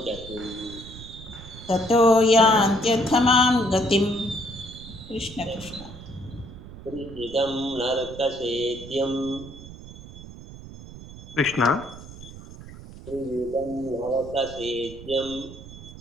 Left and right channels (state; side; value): noise; right; rumble, 15 dB below the sound